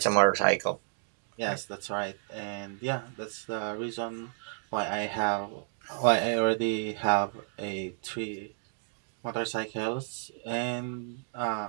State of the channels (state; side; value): silent; left; digital silence